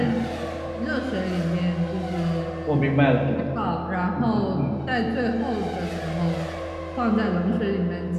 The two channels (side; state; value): both; identical; correlation 1.00